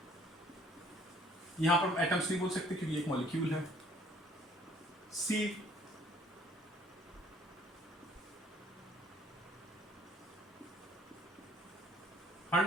यहां पर atoms नहीं बोल सकते क्योंकि एक मॉलिक्यूल है। See,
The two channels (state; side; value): normal; both; correlation 0.59